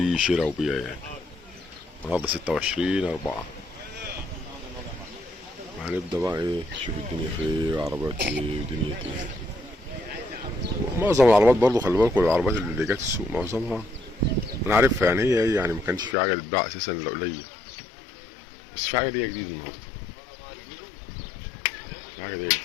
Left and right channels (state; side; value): drops out; right; at 16.2 s